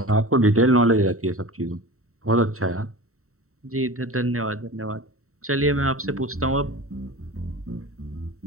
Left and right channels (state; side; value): late; left; 0.64 ms